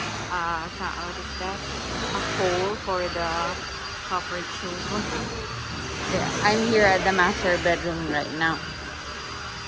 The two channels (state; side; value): identical; both; correlation 1.00